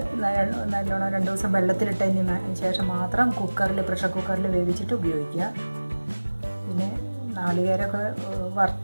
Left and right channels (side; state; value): both; inverted; correlation -1.00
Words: നല്ലോണം 2 ദിവസം വെള്ളത്തിലിട്ടതിന് ശേഷം മാത്രം പ്രഷർ കുക്കറിൽ വേവിച്ചിട്ട് ഉപയോഗിക്കുക. പിന്നെ നാളികേരമൊക്കെ